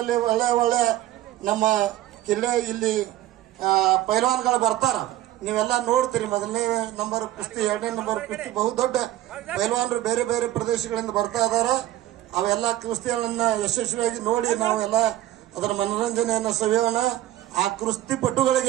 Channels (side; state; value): left; quieter; 14.3 dB